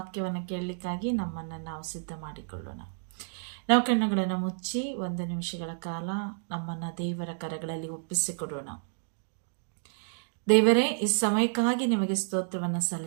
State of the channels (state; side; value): silent; left; digital silence